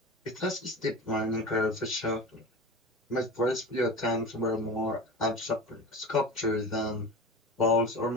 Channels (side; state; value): both; normal; correlation 0.31